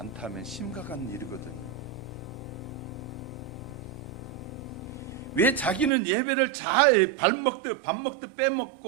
심각한 일이거든요. 왜 자기는 예배를 잘 밥 먹듯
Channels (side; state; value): left; drops out; at 5.9 s